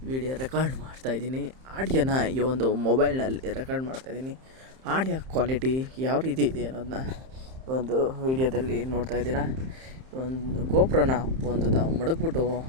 ವಿಡಿಯೋ ರೆಕಾರ್ಡ್ ಮಾಡ್ತಾಯಿದ್ದೀನಿ. ಆಡಿಯೋನ ಈ ಒಂದು ಮೊಬೈಲ್ನಲ್ಲಿ ರೆಕಾರ್ಡ್ ಮಾಡ್ತಾಯಿದ್ದೀನಿ. ಆಡಿಯೋ ಕ್ವಾಲಿಟಿ ಯಾವ ರೀತಿ ಇದೆ ಅನ್ನೋದನ್ನ ಒಂದು ವಿಡಿಯೋದಲ್ಲಿ ನೋಡ್ತಾ ಇದ್ದೀರಾ. ಒಂದು ಗೋಪ್ರೋನ ತಾವು ಮಡಗ್ಬಿಟ್ಟು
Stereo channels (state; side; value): late; left; 31 ms